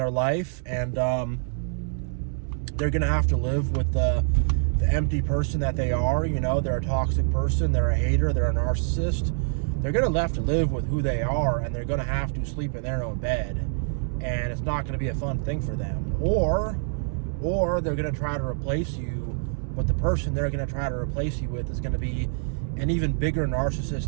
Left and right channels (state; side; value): silent; left; 61 dB below the other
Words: life, and they're going to have to live with the empty person that they are. They're a toxic person, they're a hater, they're a narcissist. They're going to have to live with who they are, and they're going to have to sleep in their own bed, and it's not going to be a fun thing for them. Or they're going to try to replace you, but the person they're going to try to replace you with is going to be an even bigger